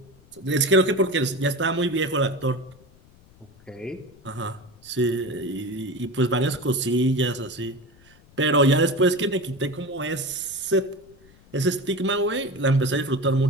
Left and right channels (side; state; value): left; noise; rumble, 27 dB below the sound